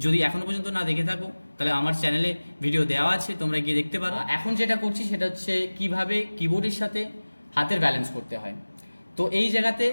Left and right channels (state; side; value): inverted; both; correlation -1.00